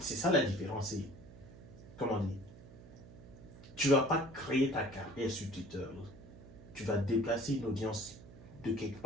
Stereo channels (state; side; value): noise; right; hum, 18 dB below the sound